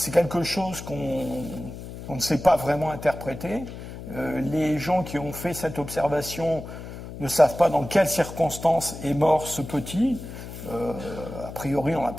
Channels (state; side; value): noise; left; hum, 11 dB below the sound